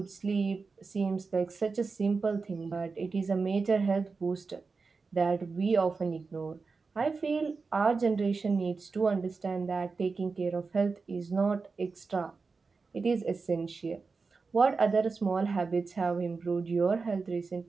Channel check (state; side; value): quieter; left; 4.5 dB